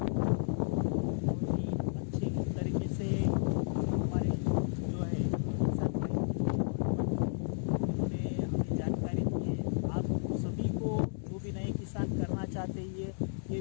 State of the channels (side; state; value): right; silent; 56 dB below the other